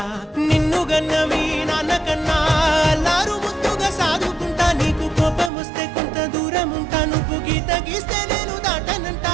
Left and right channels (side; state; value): left; drops out; at 5.5 s